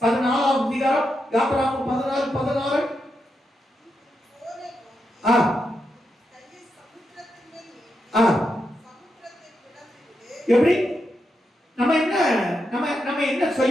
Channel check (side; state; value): both; normal; correlation 0.85